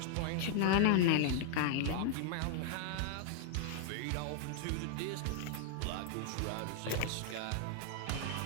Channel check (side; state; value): both; different; correlation 0.00